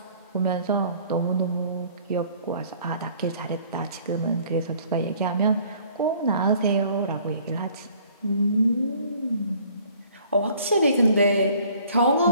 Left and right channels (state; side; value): inverted; both; correlation -0.56